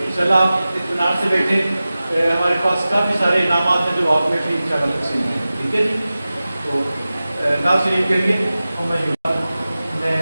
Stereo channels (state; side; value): inverted; both; correlation -0.96